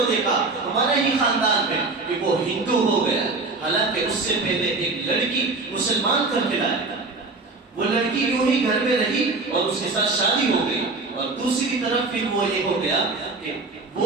دیکھا ہمارے ہی خاندان میں کہ وہ ہندو ہو گیا، حالانکہ اس سے پہلے ایک لڑکی مسلمان کر کے لایا، وہ لڑکی یوں ہی گھر میں رہی اور اس کے ساتھ شادی ہو گئی، اور دوسری طرف پھر وہ یہ ہو گیا کہ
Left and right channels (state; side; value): quieter; left; 3.6 dB